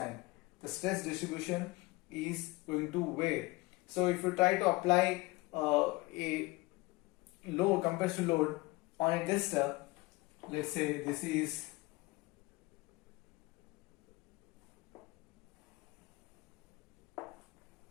The stress distribution is going to vary. So if you try to apply a load, compression load on a tester, let's say this is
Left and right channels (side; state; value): right; quieter; 23.0 dB